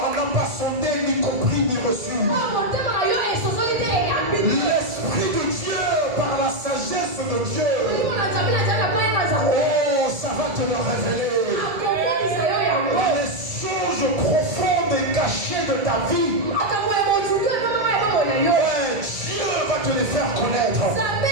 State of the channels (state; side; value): late; left; 1.7 ms